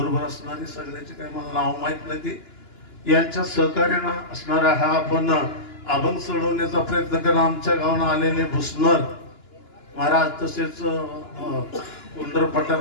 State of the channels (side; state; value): right; late; 2.9 ms